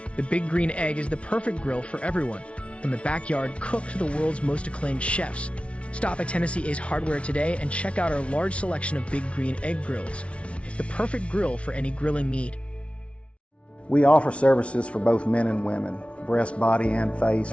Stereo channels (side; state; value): right; late; 0.061 ms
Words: The Big Green Egg is the perfect grill for everyone. From the backyard cook to the world's most acclaimed chefs. Stop at Tennessee Ace Hardware today and check out our large selection of Big Green Egg grills. The perfect grill for any grilling need. We offer services for both men and women, breast, body, and face